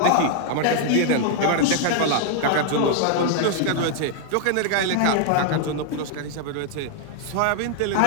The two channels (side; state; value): both; different; correlation 0.00